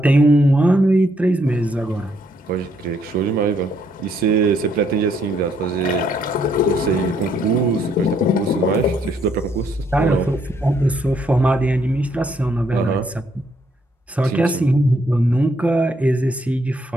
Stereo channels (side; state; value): both; normal; correlation 0.71